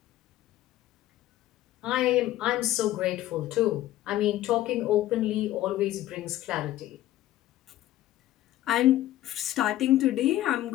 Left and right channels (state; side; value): quieter; right; 14.4 dB